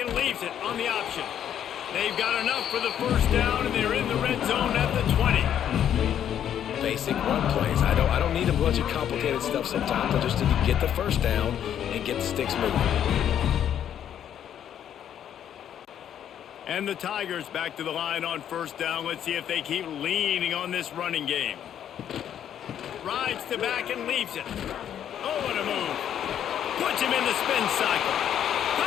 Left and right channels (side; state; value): right; quieter; 9.8 dB